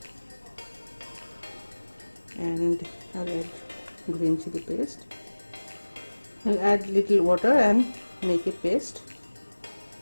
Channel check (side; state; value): both; inverted; correlation -1.00